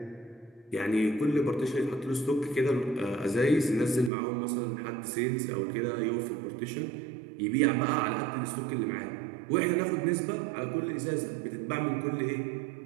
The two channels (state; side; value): drops out; left; at 4.1 s